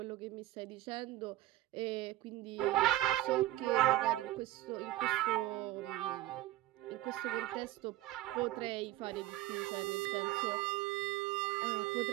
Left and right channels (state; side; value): quieter; left; 15.7 dB